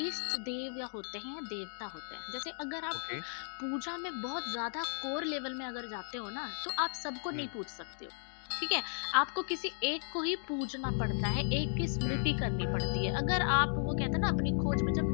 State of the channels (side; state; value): right; silent; digital silence